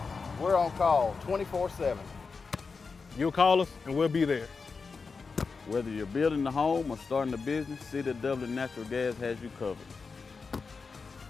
We're on call 24/7. You'll call us and we'll be there. Whether you're building a home or starting a business, City of Dublin Natural Gas has you covered.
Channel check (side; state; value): right; quieter; 4.8 dB